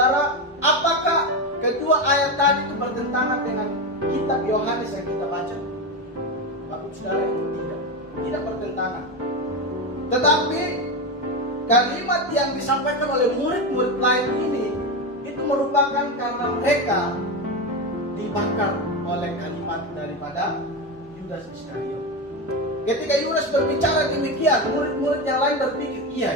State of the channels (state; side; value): normal; both; correlation 0.15